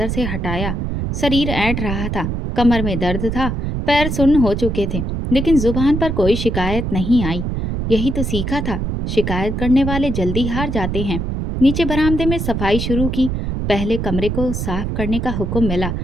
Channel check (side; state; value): right; noise; rumble, 2 dB below the sound